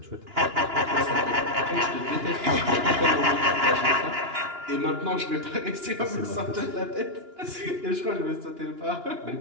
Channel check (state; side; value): late; left; 2.9 ms